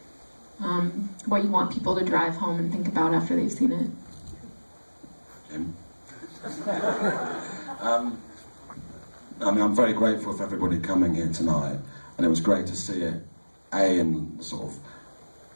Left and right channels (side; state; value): both; inverted; correlation -1.00